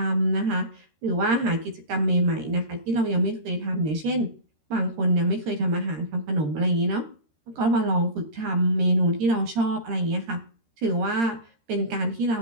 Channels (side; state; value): left; late; 13 ms